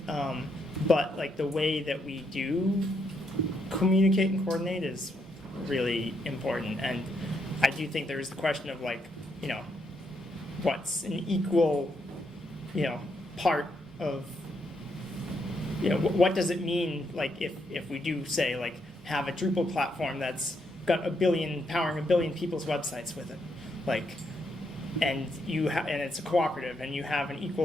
But like the way that we do communicate and coordinate is really important. And I do think there is the question of like, what's an equal, part of, what does it mean, like if we do say like have a Drupal platform that's got powering a billion people's websites with it, like, and and it's a cooperative and you have an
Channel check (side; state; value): both; normal; correlation 0.77